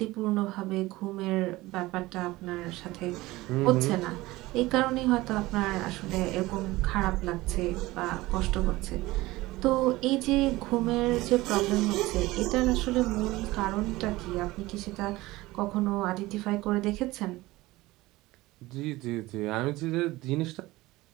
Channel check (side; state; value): left; quieter; 19.2 dB